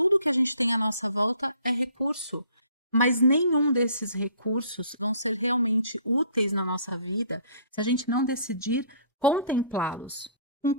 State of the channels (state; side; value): inverted; both; correlation -0.56